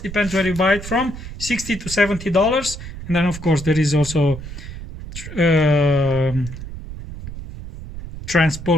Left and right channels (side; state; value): right; noise; rumble, 11 dB below the sound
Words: depends where you buy it from, $60 to $70. And then of course there is also